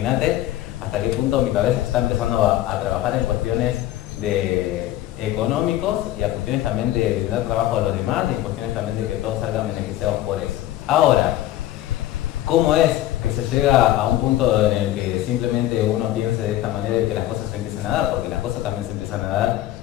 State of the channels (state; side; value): quieter; right; 13.9 dB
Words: hasta qué punto mi cabeza está empezando a trabajar en cuestiones de económicos y a cuestiones también de dar trabajo a los demás, y en cuestiones también de que todos salgan beneficiados por eso. Ahora, ¿cómo es que se llega a un punto en el que simplemente uno piense de esta manera y que las cosas se empiecen a dar? Porque las cosas también se empiezan a dar